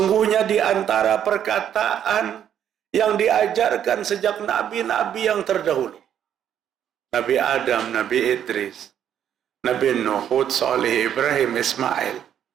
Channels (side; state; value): left; quieter; 9.7 dB